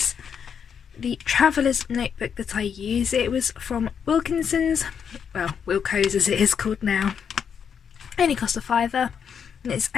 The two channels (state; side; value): quieter; right; 7.3 dB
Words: the traveller's notebook that I use. It was from Wilkinson's, well Wilco's as it is called now. Only cost a £5 and it's